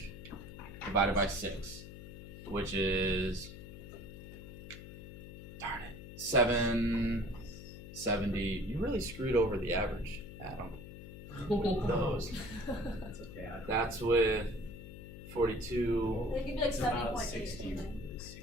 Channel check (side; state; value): left; noise; hum, 13 dB below the sound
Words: Divided by 6, which is, darn it, 770. You really screwed over the average, Adam. Those. That's okay. That's with 42. It could be like It's about 70.8. 60, something.